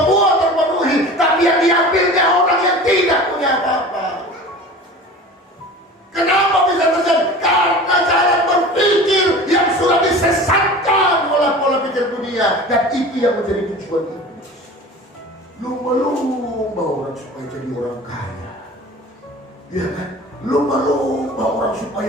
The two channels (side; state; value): both; normal; correlation 0.38